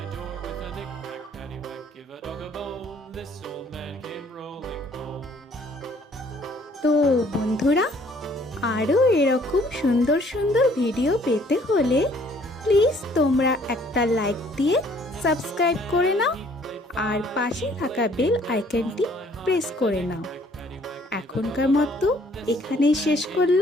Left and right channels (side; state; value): both; normal; correlation 0.60